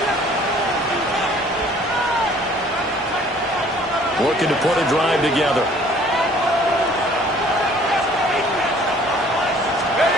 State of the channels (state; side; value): normal; both; correlation 0.55